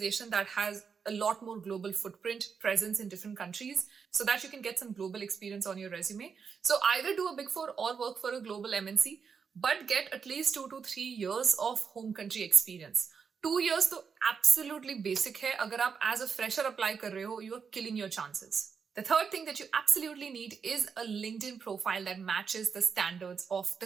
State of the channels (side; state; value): left; quieter; 6.1 dB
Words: that has a lot more global footprint, presence in different countries, so that you can get some global experience on your resume. So either do a Big Four or work for a global MNC, but get at least 2 to 3 years of home country experience. 2 years तो absolutely basic है. अगर आप as a fresher apply कर रहे हो, you are killing your chances. The third thing that you absolutely need is a LinkedIn profile that matches the standards of